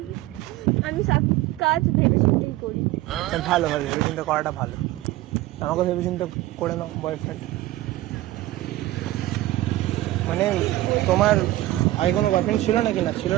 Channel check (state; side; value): quieter; left; 16.4 dB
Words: আমি সব কাজ ভেবে চিন্তেই করি। ভালো ভালো, ভেবে চিন্তা করাটা ভালো। আমাকে ভেবে চিন্তা করে নাও বয়ফ্রেন্ড। মানে তোমার আগে কোনো বয়ফ্রেন্ড ছিল নাকি? না ছিল